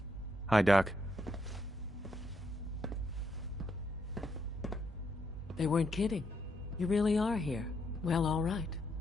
Hi, Doc. They weren't kidding. You really are here. Well, all right.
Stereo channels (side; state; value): both; normal; correlation 0.77